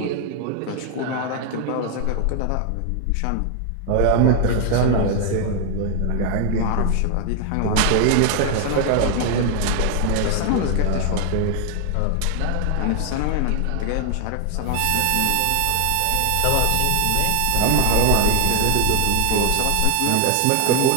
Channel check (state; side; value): different; both; correlation 0.00